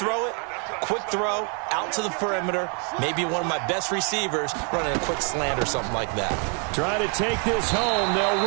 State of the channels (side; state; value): left; quieter; 38.5 dB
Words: it, quick throw, out to the perimeter, maybe one of my best receivers running a quick slant or something like that. Try to take this home,